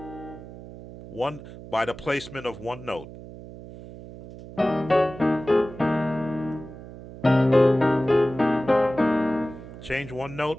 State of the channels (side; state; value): right; noise; hum, 15 dB below the sound